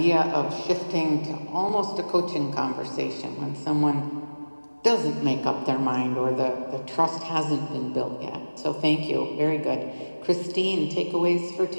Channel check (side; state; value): both; inverted; correlation -1.00